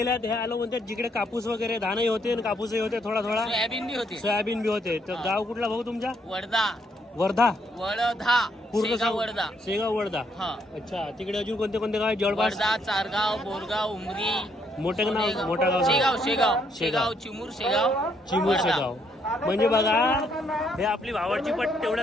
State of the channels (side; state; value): both; normal; correlation 0.72